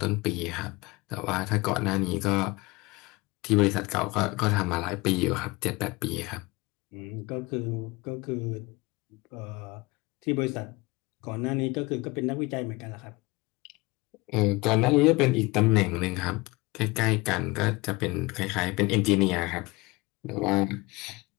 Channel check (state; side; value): quieter; right; 23.5 dB